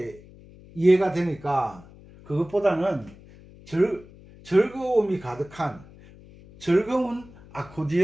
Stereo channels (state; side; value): noise; left; hum, 22 dB below the sound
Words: 이해가 되니까, 그것보다는 즐거움이 가득한 즐거운